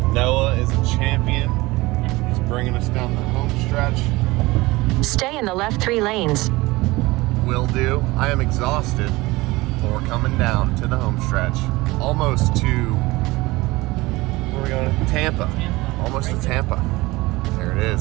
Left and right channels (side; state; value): left; quieter; 20.9 dB